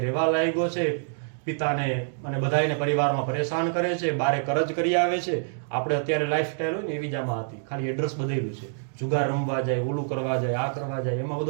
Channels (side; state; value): left; silent; digital silence